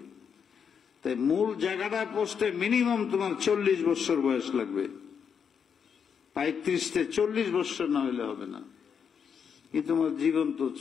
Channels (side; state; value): right; quieter; 7.0 dB